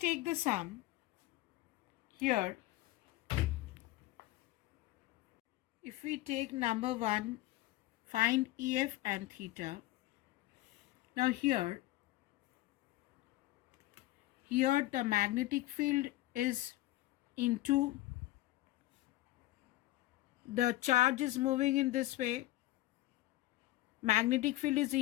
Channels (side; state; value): right; quieter; 17.2 dB